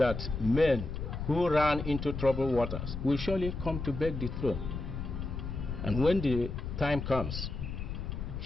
men who ran into troubled waters will surely come to beg the throne. And when the time comes,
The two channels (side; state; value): left; noise; rumble, 5 dB below the sound